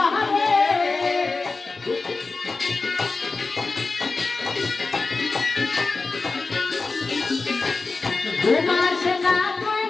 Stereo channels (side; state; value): right; quieter; 3.9 dB